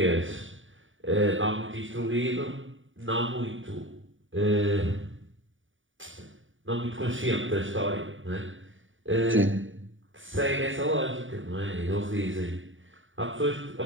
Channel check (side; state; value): left; late; 0.57 ms